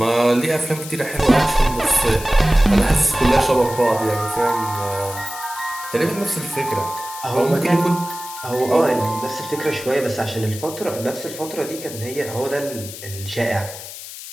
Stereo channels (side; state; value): left; noise; hiss, 12 dB below the sound